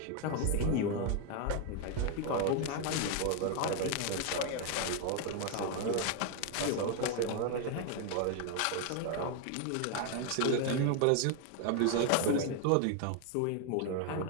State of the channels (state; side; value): different; both; correlation 0.01